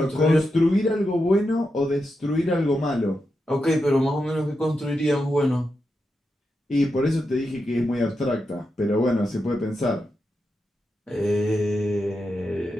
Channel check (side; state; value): both; normal; correlation 0.87